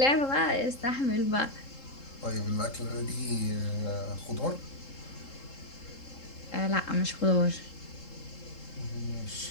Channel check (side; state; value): right; late; 3.7 ms